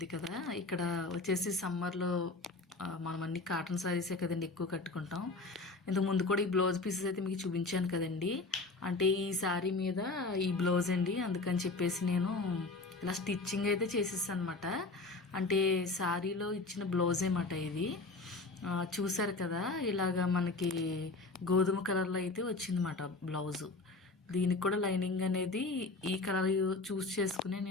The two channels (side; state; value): right; quieter; 3.5 dB